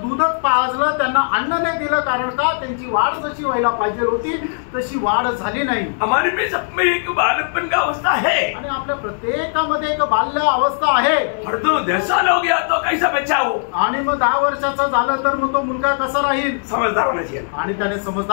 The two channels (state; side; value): silent; right; digital silence